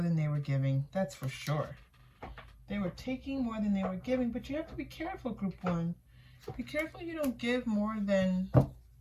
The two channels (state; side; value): identical; both; correlation 1.00